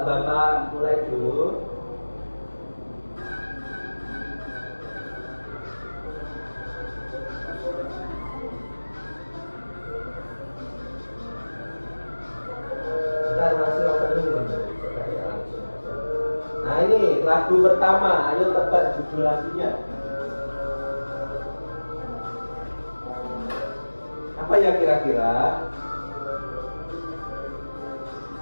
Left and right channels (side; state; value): both; inverted; correlation -1.00